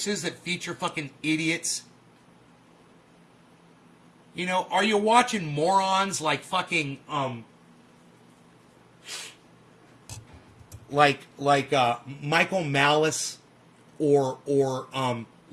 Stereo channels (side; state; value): both; identical; correlation 1.00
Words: that feature fucking idiots? You know, are you watching morons like fucking Michael Malice or